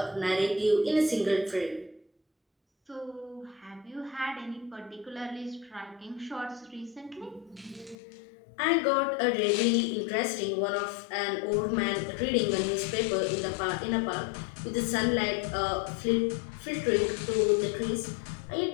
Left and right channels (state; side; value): drops out; right; at 8.0 s